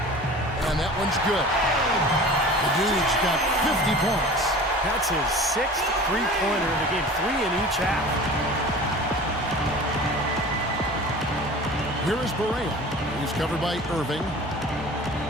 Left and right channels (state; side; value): normal; both; correlation 0.40